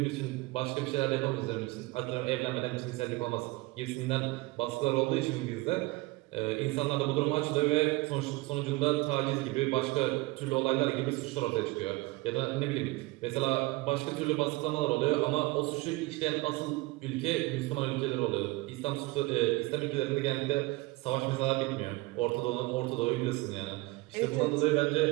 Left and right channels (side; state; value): left; quieter; 22.1 dB